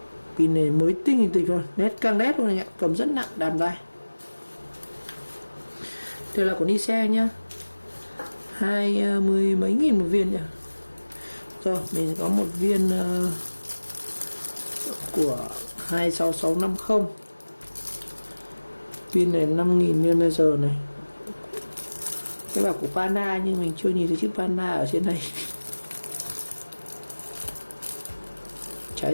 pin này mới tinh hình tịch luôn, nét căng nét luôn này ạ, cầm rất nặng, đàm tay. Đây là của Nicel nhá, 20 mấy nghìn một viên nhỉ. Rồi mình có một viên của 26650, pin này 5.000 mAh này. Cái bảo của Pana nhưng mình chưa nhìn thấy chữ Pana ở trên này. Chả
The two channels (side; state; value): both; inverted; correlation -1.00